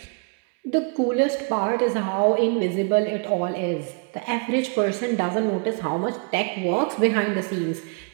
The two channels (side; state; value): left; quieter; 35.4 dB